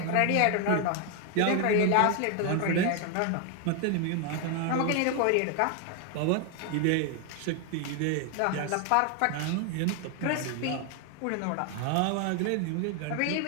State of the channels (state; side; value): different; both; correlation 0.01